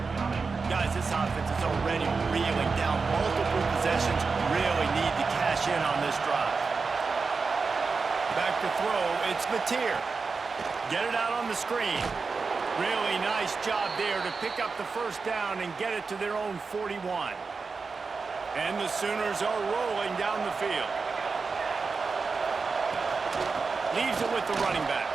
Guys, this offense is already reeling down multiple possessions. Really need to cash in on this drive. Back to throw. It's Mateer. Get it out on the screen. Really nice job there to pick up the first down and get it to their own 41. And the Sooners are rolling down the field. Leaves it with the running back.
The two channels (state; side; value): quieter; left; 4.6 dB